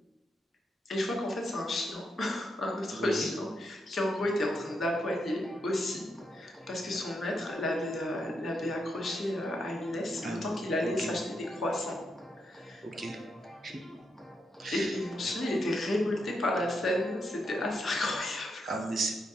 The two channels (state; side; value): normal; both; correlation 0.82